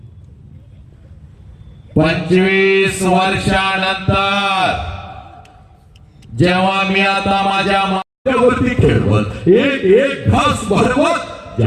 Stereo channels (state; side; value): identical; both; correlation 1.00